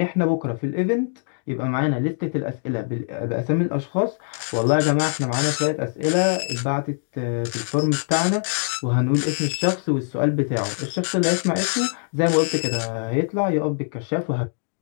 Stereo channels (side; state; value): right; silent; digital silence